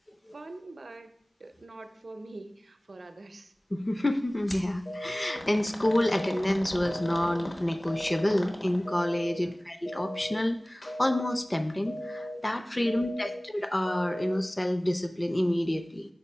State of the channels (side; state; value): both; normal; correlation 0.98